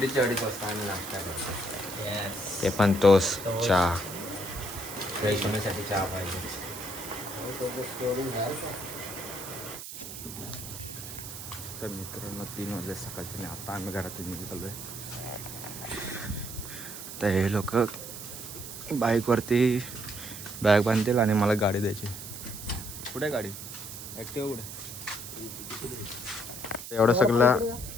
2:30 वाजता आम्ही नाश्ता करतो. ते Yes. पण तोच चहा. फ्रेश होण्यासाठी चहा पाहिजे. तर मित्रांनो 3 वाजले सकाळचे आणि आता आम्ही घरातून निघालो आहे. तर हे लोक बाईकवरती बॅग बांधतील आणि मला गाडी द्यायची. कुठे गाडी? ॲक्टिवा कुठे? एवढं सगळं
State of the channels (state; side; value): noise; right; hiss, 10 dB below the sound